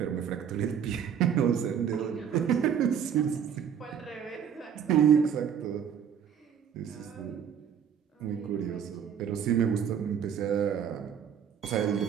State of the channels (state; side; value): quieter; left; 8.2 dB